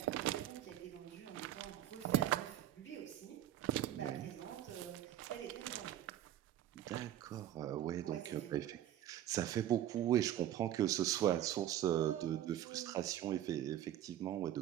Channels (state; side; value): quieter; left; 12.2 dB